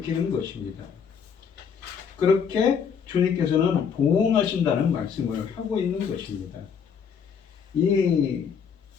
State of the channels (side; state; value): right; quieter; 6.9 dB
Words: 것입니다. 그렇게 주님께서는 보응하신다는 말씀을 하고 있는 것입니다. 이